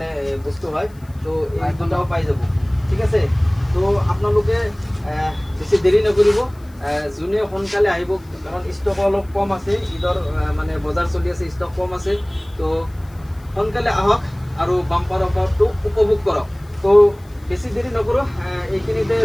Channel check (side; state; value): left; noise; hiss, 29 dB below the sound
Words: বস্তু হয় তো এই দুটাও পাই যাব ঠিক আছে তো আপোনালোকে বেছি দেৰি নকৰিব যোনে সোনকালে আহিব কাৰণ ষ্টক অলপ কম আছে ঈদৰ মানে বজাৰ চলি আছে ষ্টক কম আছে তো সোনকালে আহক আৰু বাম্পাৰ অফাৰটো উপভোগ কৰক তো বেছি দেৰি নকৰোঁ এইখিনিতে